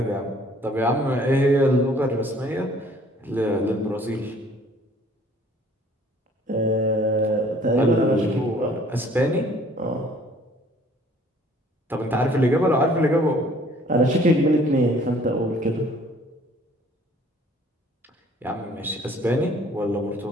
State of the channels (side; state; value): both; normal; correlation 0.56